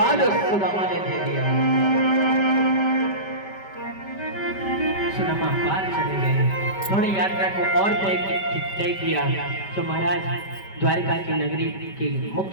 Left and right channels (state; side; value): late; right; 5.1 ms